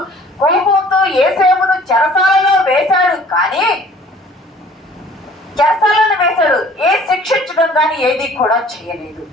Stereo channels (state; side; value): normal; both; correlation 0.52